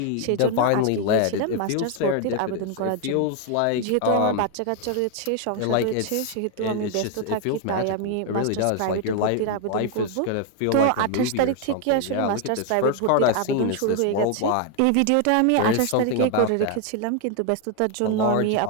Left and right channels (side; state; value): both; different; correlation 0.00